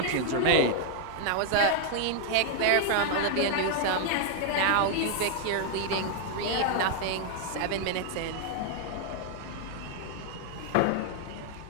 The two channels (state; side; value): different; both; correlation 0.00